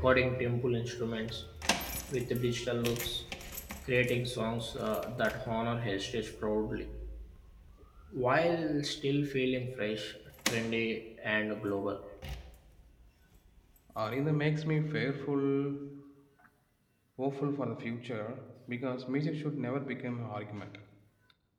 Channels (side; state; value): both; identical; correlation 1.00